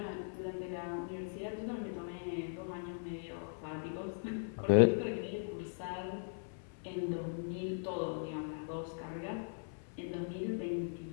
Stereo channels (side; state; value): right; silent; 52 dB below the other